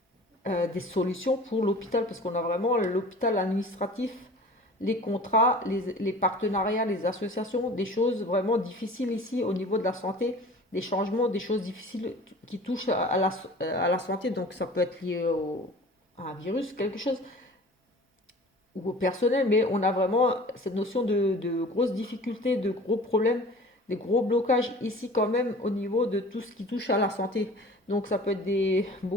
des solutions pour l'hôpital, parce qu'on a vraiment l'hôpital administratif, les contrats, les partenariats, les associations, des choses vraiment difficiles ici au niveau de la santé, des changements, des choses difficiles qui touchent à la santé. Donc ça peut être lié à un virus, quelque chose, ou au personnel, mais on a vraiment cette notion de grosses difficultés, de gros problèmes, des gros blocages ici quand même au niveau de tout ce qui touche à la santé. Donc ça peut être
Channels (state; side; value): normal; both; correlation 0.43